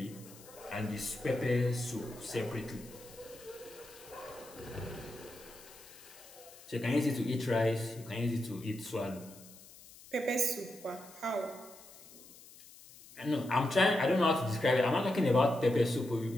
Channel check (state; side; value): noise; left; hiss, 20 dB below the sound